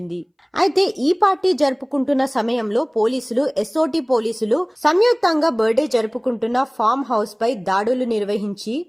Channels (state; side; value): identical; both; correlation 1.00